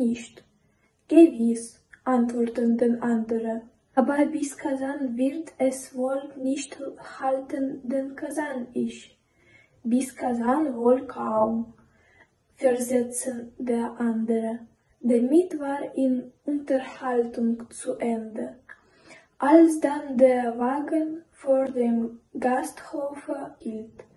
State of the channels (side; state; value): both; identical; correlation 1.00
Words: Gewiss, antworteten den anderen. Aber bis Kasan wird es wohl nicht halten, denn Kasan ich. Bis Kasan wohl kaum, versetzte der andere. Damit war die Unterhaltung zu Ende. Als dann der Wagen vor dem Gasthofe hielt,